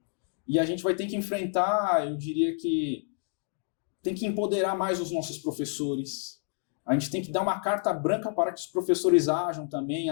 E a gente vai ter que enfrentar, eu diria que tem que empoderar mais os nossos professores. A gente tem que dar uma carta branca para que os professores ajam também,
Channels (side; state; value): right; silent; 59 dB below the other